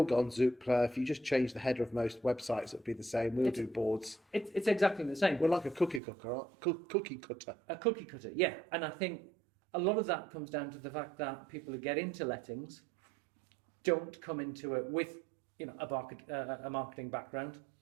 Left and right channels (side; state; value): left; drops out; at 6.0 s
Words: got on Zoopla. If you just change the header of most websites, it'd be the same. We'll do boards. It's exactly the same. We're like a cookie cutter. Cookie cutter. A cookie cutter, yeah. And I think a lot of that comes down to the fact that people who get into lettings don't come into it with a marketing background